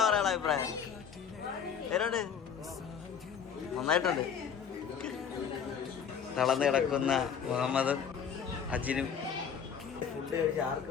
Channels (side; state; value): right; quieter; 7.4 dB